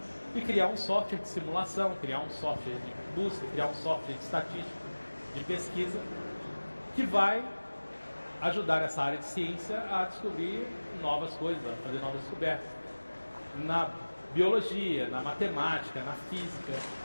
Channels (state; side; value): inverted; both; correlation -1.00